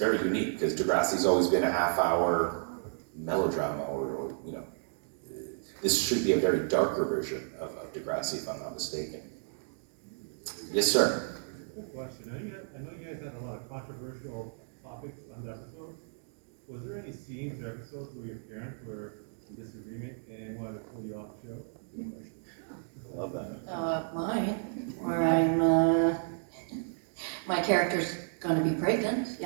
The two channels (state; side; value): silent; left; digital silence